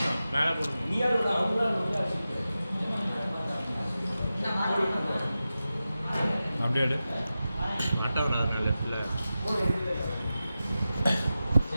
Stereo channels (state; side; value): inverted; both; correlation -0.93